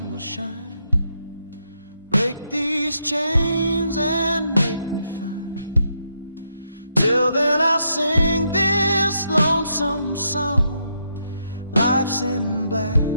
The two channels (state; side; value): inverted; both; correlation -0.79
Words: will shine, break these chains and make me fine. Till then I'll sing this lonesome song. Life's in black,